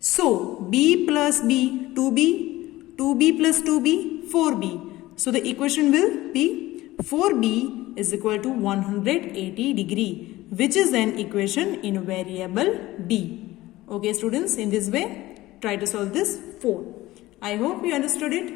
B plus B, 2B, 2B plus 2B, 4B. So, the equation will be 4B is equal to 180 degree, which is an equation in variable B. Okay, students, in this way, try to solve this 4. I hope you understood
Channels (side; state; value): right; quieter; 17.5 dB